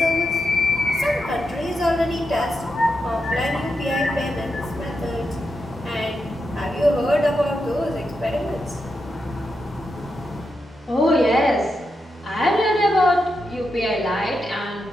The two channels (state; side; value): normal; both; correlation 0.86